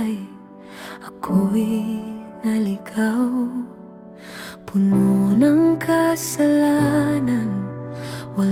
ako'y naligaw. Puno ng kasalanan,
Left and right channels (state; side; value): identical; both; correlation 1.00